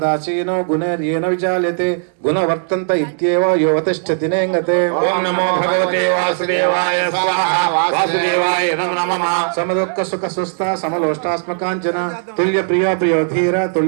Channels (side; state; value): left; silent; digital silence